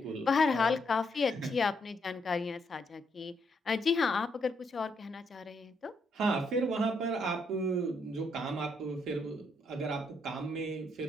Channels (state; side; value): normal; both; correlation 0.75